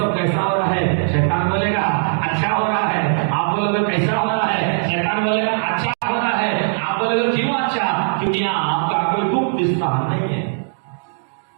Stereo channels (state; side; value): silent; left; digital silence